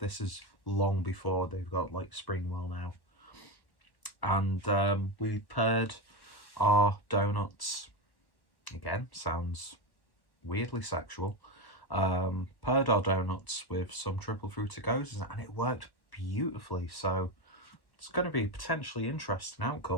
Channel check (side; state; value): right; late; 1.1 ms